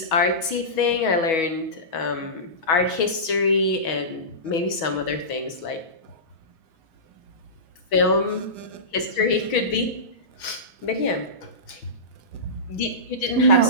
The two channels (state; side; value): late; right; 6.1 ms